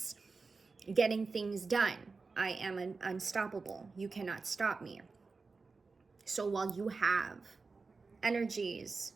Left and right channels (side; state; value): left; quieter; 4.2 dB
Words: getting things done. I am unstoppable. You cannot stop me. So while you have energies